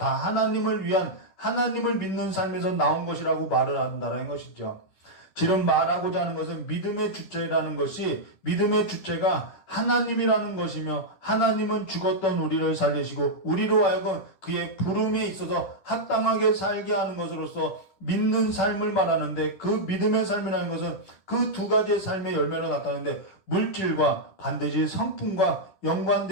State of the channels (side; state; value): right; late; 10 ms